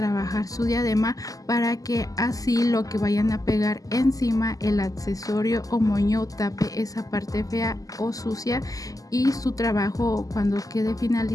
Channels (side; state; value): right; late; 0.17 ms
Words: su diadema, para que así lo que vayan a pegar encima, el accesorio o moño, tape esa parte fea o sucia y su trabajo cuando quede